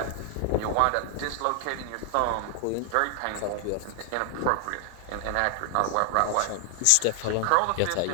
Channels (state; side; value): different; both; correlation 0.00